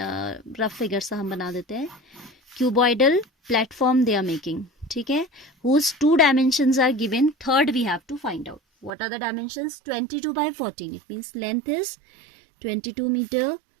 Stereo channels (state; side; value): drops out; left; at 8.9 s